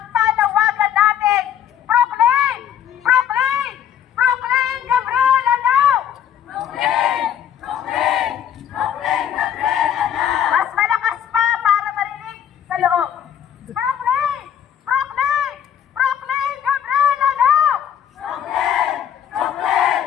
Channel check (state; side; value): quieter; right; 9.4 dB